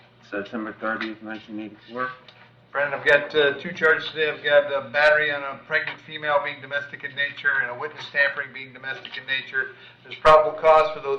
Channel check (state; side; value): identical; both; correlation 1.00